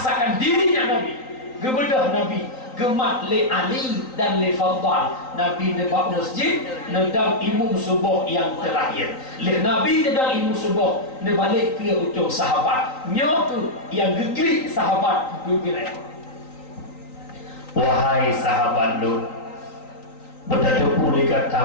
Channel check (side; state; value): right; late; 3.9 ms